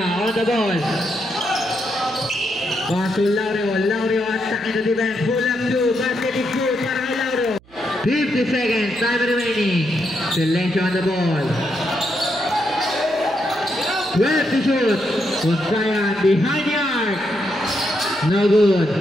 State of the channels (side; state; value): right; noise; hum, 28 dB below the sound